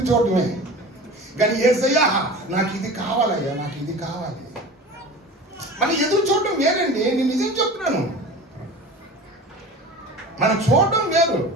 చూడటమే. కానీ యేసయ్యా నాకు ఇది కావాలయ్యా, నాకు ఇది కావాలి. మన ఎదురు చూడటం వేరండి. నేను నిజం చెప్తున్నాను. మనం చూడటం వేరు.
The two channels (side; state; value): both; normal; correlation 0.36